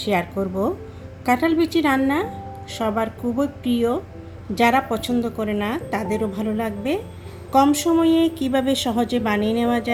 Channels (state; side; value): identical; both; correlation 1.00